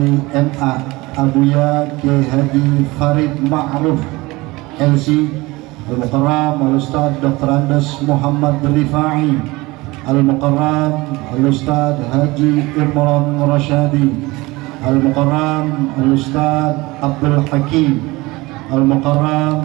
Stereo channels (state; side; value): quieter; left; 21.8 dB